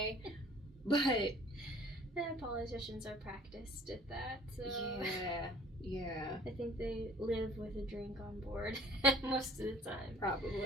But politicians are practiced at that, so yeah, I think they live with a drink on board most of the time.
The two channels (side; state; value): both; normal; correlation 0.52